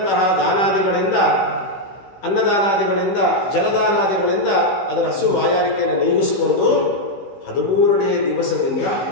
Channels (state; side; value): late; right; 15 ms